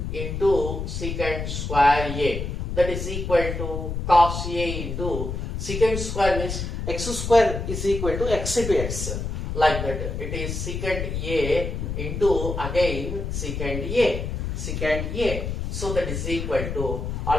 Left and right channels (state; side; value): noise; left; rumble, 4 dB below the sound